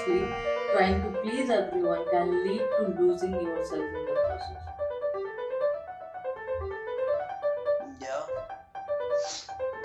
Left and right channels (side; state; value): both; identical; correlation 1.00